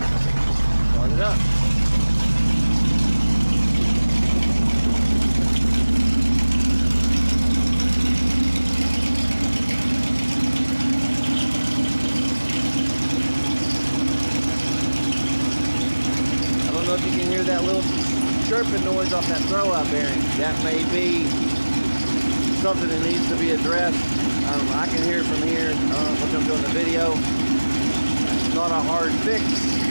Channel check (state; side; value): inverted; both; correlation -1.00